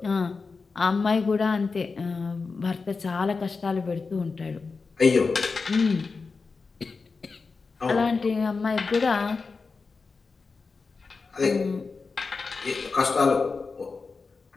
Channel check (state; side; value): quieter; right; 4.5 dB